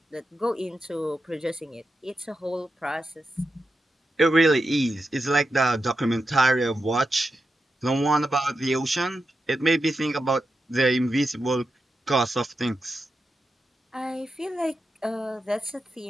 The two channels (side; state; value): both; normal; correlation 0.89